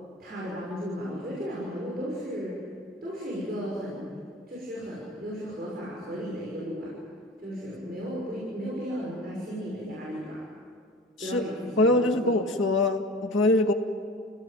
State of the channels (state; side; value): normal; both; correlation 0.39